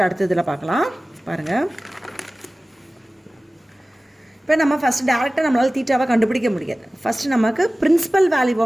அடுத்ததில் பார்க்கலாம். பாருங்கள், இப்போ நம்ம ஃபஸ்ட்டு டேரெக்டாக நம்மளால் தீட்டாவை கண்டுபிடிக்க முடியாது. ஃபஸ்ட்டு நமக்கு பிரின்சிபல் வேல்யூ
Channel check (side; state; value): both; normal; correlation 0.97